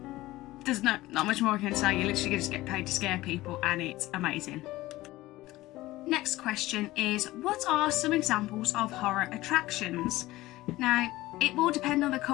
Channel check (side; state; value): right; quieter; 17.7 dB